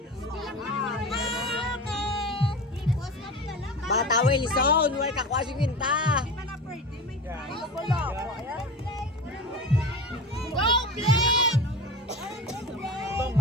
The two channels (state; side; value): normal; both; correlation 0.30